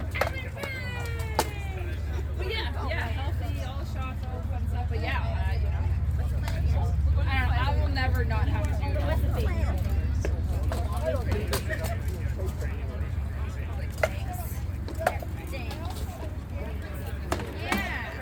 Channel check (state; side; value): identical; both; correlation 1.00